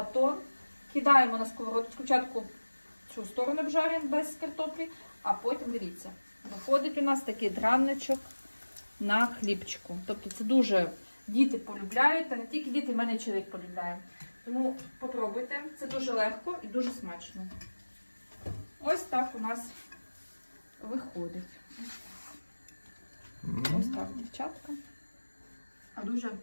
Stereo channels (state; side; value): inverted; both; correlation -1.00